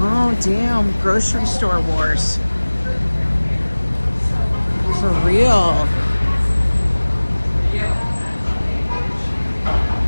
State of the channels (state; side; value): inverted; both; correlation -1.00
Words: damn. Grocery store wars. For real.